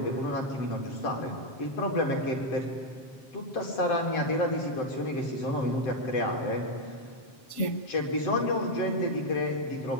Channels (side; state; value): right; late; 7.5 ms